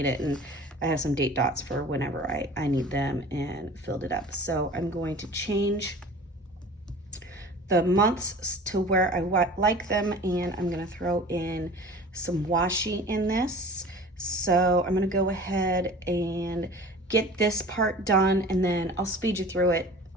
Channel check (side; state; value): both; normal; correlation 0.41